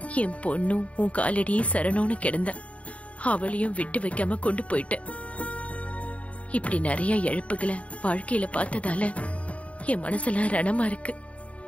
என் பொண்ணும் உன் காலடியே சரணோன்னு கிடந்த. அவளையும் விட்டு வைக்காம கொண்டு போயிட்ட. இப்படி நிறைய இழப்புகளை வாழ்க்கையில பார்த்ததால என் மனசெல்லாம் ரணமா இருக்கு.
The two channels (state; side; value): late; right; 0.065 ms